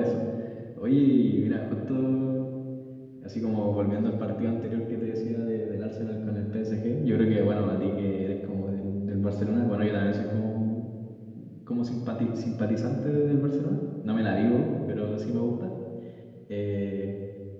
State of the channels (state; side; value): identical; both; correlation 1.00